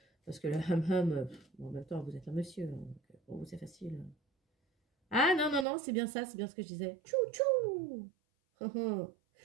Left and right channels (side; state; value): left; drops out; at 5.7 s